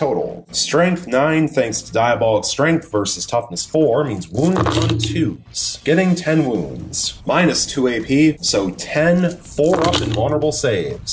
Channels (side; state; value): both; identical; correlation 1.00